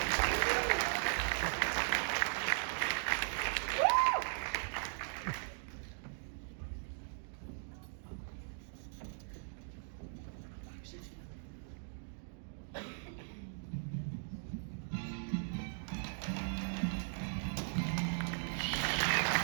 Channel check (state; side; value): silent; left; digital silence